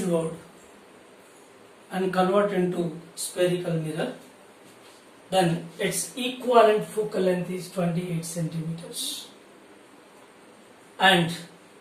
and converted into spherical mirror, then its equivalent focal length is 28 centimeters. And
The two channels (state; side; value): identical; both; correlation 1.00